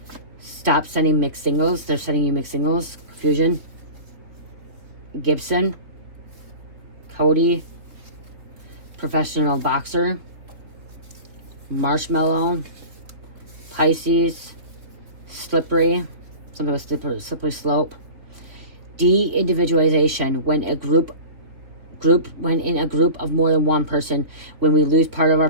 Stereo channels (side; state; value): left; late; 3.5 ms